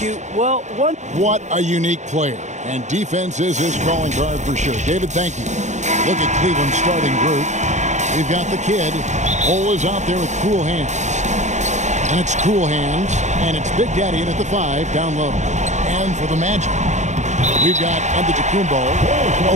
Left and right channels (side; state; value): left; late; 0.34 ms